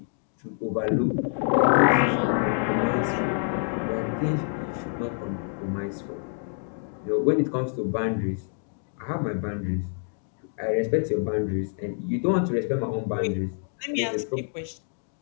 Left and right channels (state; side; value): silent; right; 60 dB below the other